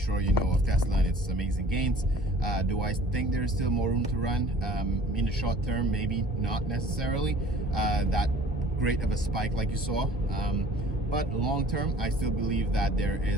you know of Tesla and its amazing gains. Do I think there's still more room to run in the short term? Maybe not necessarily that great of a spike like you saw, but long term I still believe that there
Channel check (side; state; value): both; normal; correlation 0.49